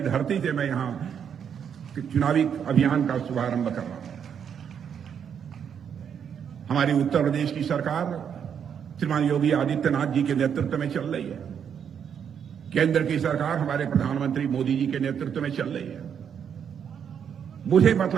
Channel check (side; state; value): left; quieter; 7.9 dB